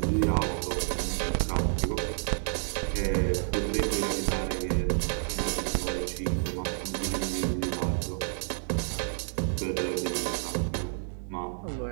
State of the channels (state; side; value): silent; left; 58 dB below the other